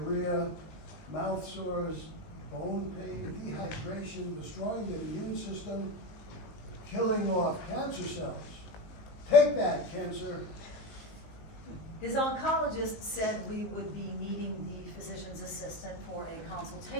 mouth sores, bone pain, dehydration, destroying the immune system, killing off cancer cells. Take that, cancer. His oncologist said we would be meeting the physician's assistant for a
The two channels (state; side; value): late; right; 19 ms